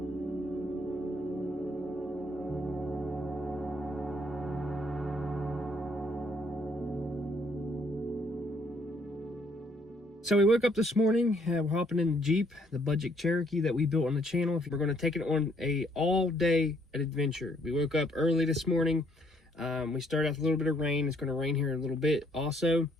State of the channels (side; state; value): both; normal; correlation 0.67